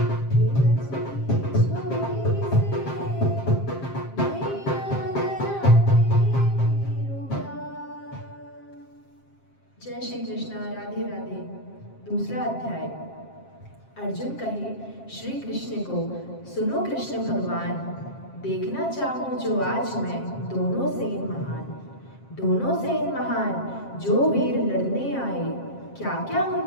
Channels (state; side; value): late; right; 7.5 ms